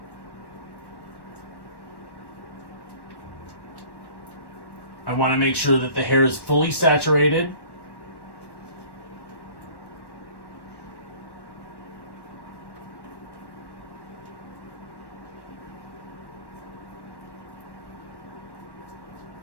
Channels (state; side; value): late; right; 1.1 ms